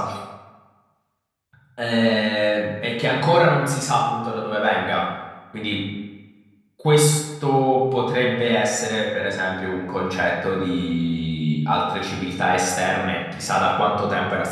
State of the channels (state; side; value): identical; both; correlation 1.00